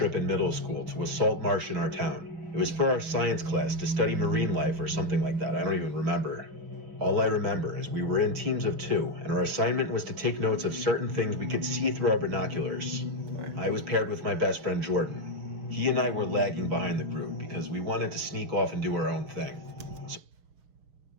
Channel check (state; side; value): late; left; 6.4 ms